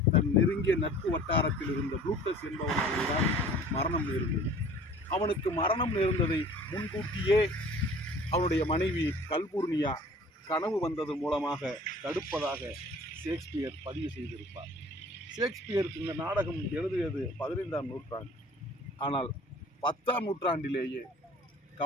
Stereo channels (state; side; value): normal; both; correlation 0.48